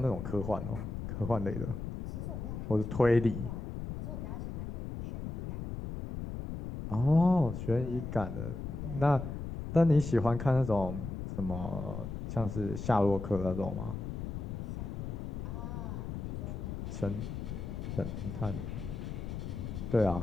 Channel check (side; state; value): left; noise; rumble, 6 dB below the sound